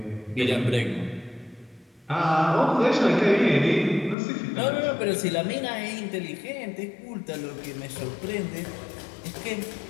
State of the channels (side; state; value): right; drops out; at 4.2 s